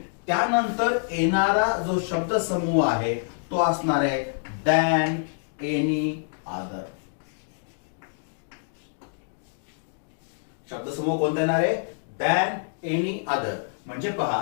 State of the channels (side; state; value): right; silent; digital silence